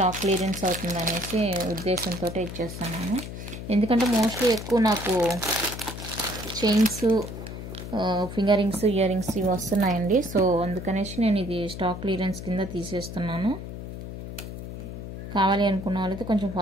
clearance అవుతుంది అనేసి ఉద్దేశంతో ఇచ్చేస్తున్నాను. ఎందుకంటే మోస్ట్లీ ఎక్కువ నాకు chains, finger rings, ear rings ఇవి వస్తున్నాయండి. సో అందుకనేసి నేను ఇది స్టాక్ క్లియరెన్స్ కింద తీసేస్తున్నాను. కావాలి అనుకున్న వాళ్ళైతే కొంచెం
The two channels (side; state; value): left; noise; hum, 9 dB below the sound